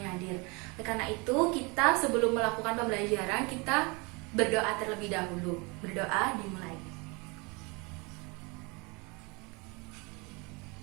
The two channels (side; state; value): left; quieter; 28.4 dB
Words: hadir. Karena itu kita sebelum melakukan pembelajaran kita berdoa terlebih dahulu. Berdoa dimulai.